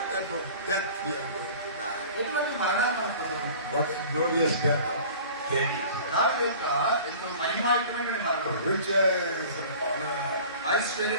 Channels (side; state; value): both; inverted; correlation -0.43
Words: type of death we are going to die? ఎటువంటి మరణాన్ని మనం పొందుతాం? What glorious death of David. దావీదు యొక్క ఎంతో మహిమాయుతమైన మరణం. Riches and honor.